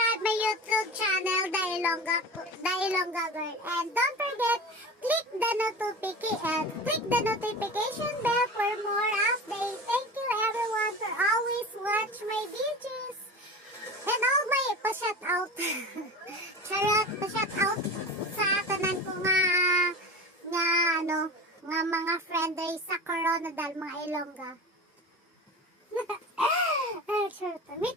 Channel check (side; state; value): both; normal; correlation 0.32